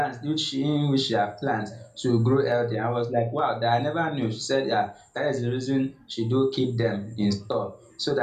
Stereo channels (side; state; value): both; identical; correlation 1.00